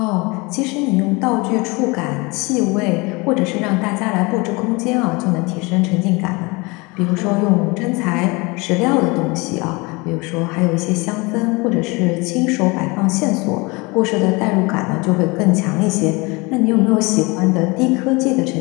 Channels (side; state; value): right; quieter; 26.0 dB